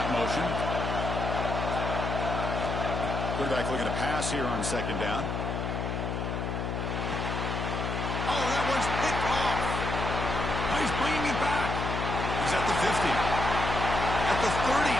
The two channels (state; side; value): noise; left; hum, 2 dB below the sound